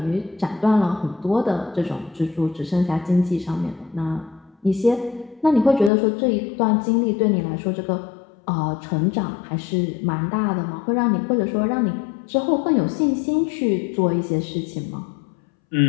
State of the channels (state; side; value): drops out; right; at 5.9 s